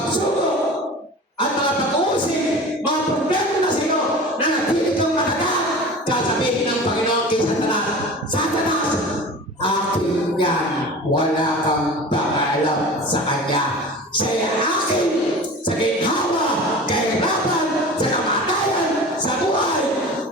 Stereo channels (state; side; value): normal; both; correlation 0.36